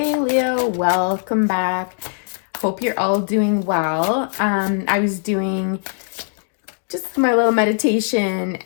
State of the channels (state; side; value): silent; right; digital silence